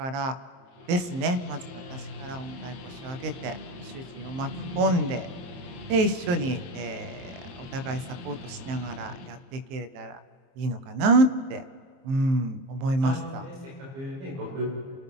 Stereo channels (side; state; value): left; late; 23 ms